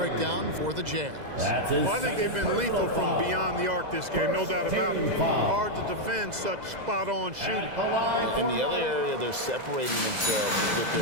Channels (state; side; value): late; left; 2.0 ms